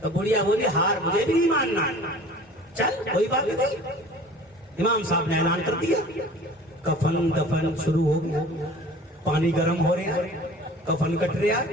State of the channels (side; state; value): both; normal; correlation 0.45